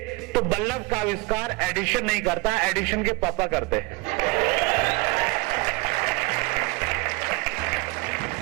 तो बल्लभ का आविष्कार एडिशन नहीं करता, एडिशन के पापा करते।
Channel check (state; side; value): quieter; left; 24.9 dB